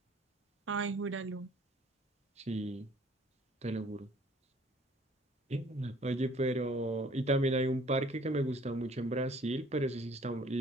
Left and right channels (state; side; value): normal; both; correlation 0.56